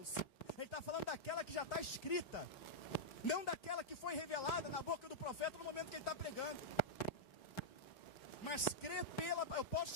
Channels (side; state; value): right; late; 4.0 ms